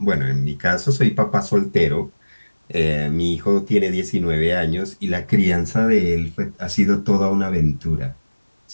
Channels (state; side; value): inverted; both; correlation -1.00